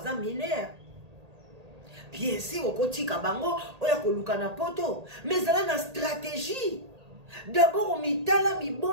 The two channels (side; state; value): left; late; 1.8 ms